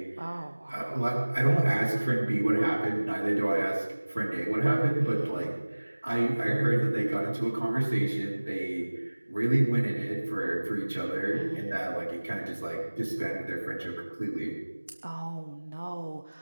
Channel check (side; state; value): both; inverted; correlation -1.00